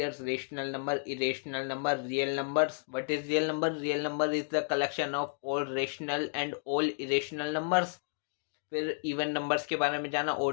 rational number, irrational number, real numbers. What is real number? Real number is the collection of all rational and all irrational numbers. फिर इवन नंबर्स के बारे में जाना,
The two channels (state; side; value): silent; right; digital silence